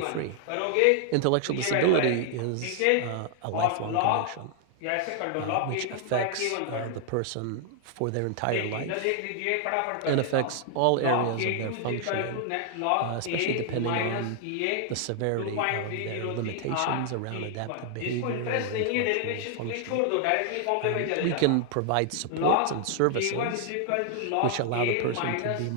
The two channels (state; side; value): different; both; correlation 0.00